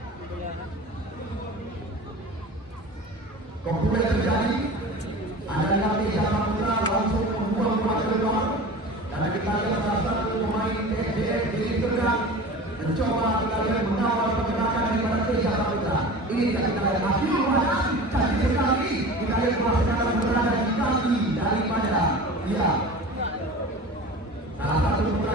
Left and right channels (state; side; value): normal; both; correlation 0.36